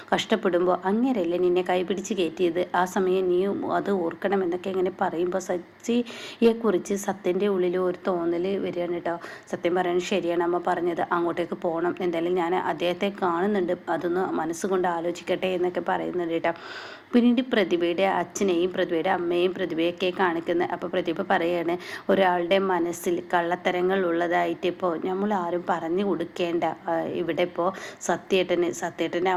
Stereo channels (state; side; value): identical; both; correlation 1.00